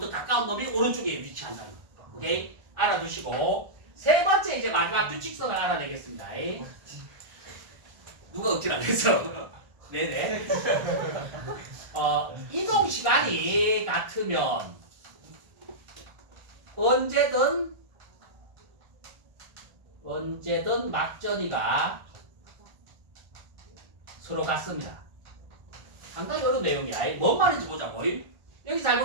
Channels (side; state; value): left; late; 1.4 ms